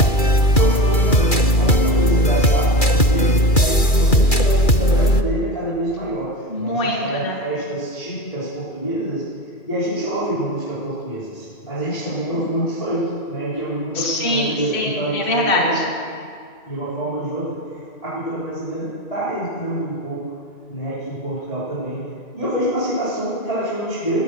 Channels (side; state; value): right; late; 2.3 ms